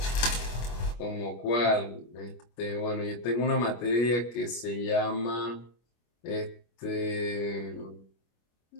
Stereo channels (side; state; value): right; late; 25 ms